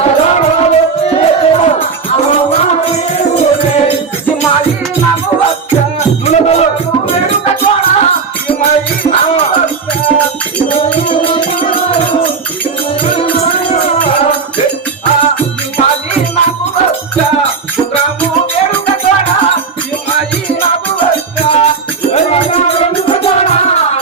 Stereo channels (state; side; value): quieter; left; 5.2 dB